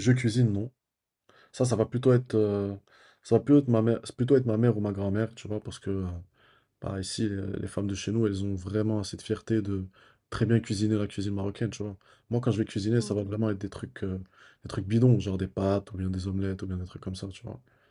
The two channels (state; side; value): identical; both; correlation 1.00